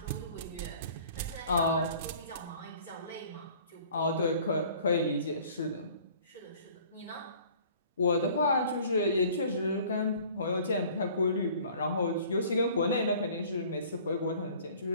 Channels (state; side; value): inverted; both; correlation -0.51